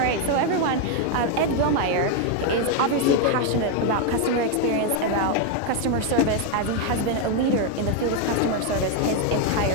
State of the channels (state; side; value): different; both; correlation 0.01